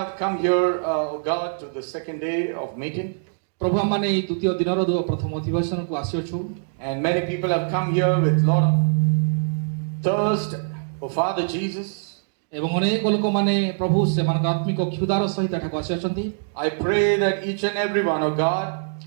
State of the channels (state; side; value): silent; left; digital silence